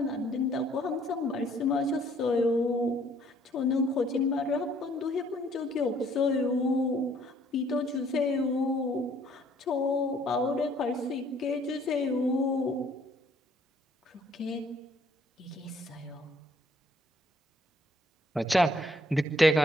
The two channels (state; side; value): normal; both; correlation 0.63